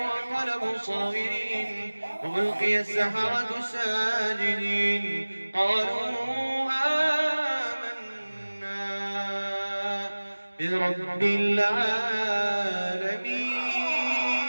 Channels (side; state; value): both; inverted; correlation -1.00